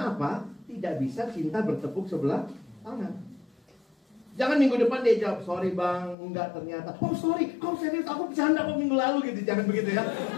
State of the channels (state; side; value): drops out; right; at 6.2 s